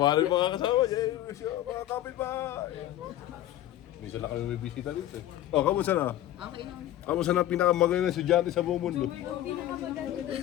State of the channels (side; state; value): right; quieter; 13.3 dB